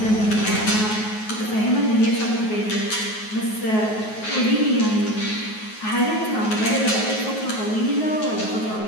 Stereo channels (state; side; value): late; right; 9.3 ms